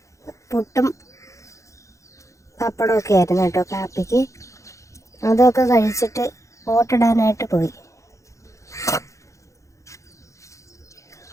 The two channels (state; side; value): late; right; 0.15 ms